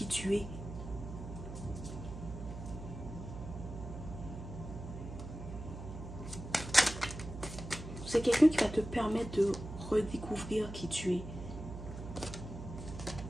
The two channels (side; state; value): right; noise; hum, 9 dB below the sound